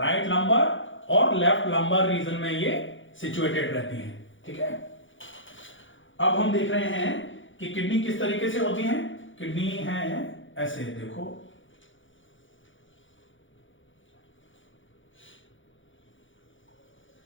लंबर और लेफ्ट लंबर रीजन में ये सिचुएटेड रहती हैं। ठीक है। अब हम देख रहे हैं कि किडनी किस तरीके से होती है। किडनी है ऐसे, देखो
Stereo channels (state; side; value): late; right; 0.56 ms